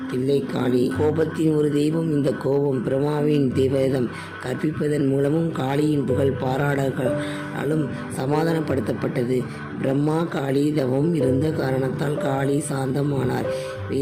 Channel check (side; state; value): both; identical; correlation 1.00